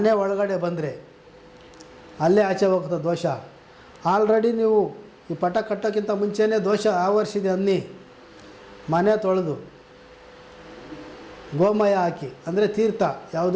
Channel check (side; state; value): both; identical; correlation 1.00